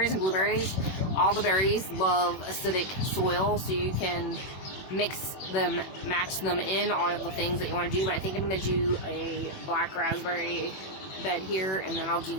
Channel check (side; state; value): right; late; 21 ms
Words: and blueberries, all the berries love acidic soil, so you can mix them, match them in, all of the things that you want to do. But I think I'm going to do a black raspberry bed here, and then I'll